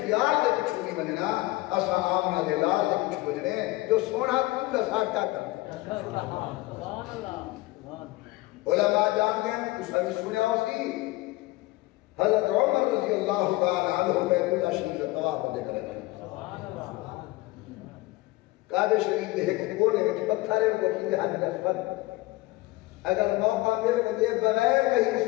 دے کچھو نہیں بننا اسا آمنہ دے لال دے کچھو بننے جو سونا کون لسا کیا کرنے علماء جان دیں اس نے سنیا اسی حضرت عمر رضی اللہ تعالی عنہ بیت اللہ شریف طواف دے کرے کعبہ شریف دے کونے میں پتھر ہے وہ کی حج نسبت اگر موقع مل کے بغیر کہیں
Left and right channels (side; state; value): right; quieter; 19.9 dB